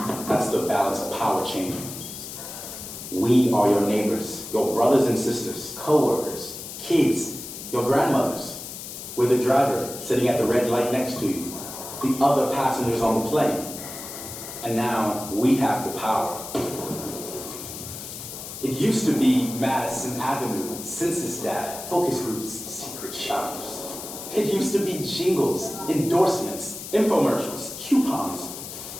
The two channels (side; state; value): left; noise; hiss, 10 dB below the sound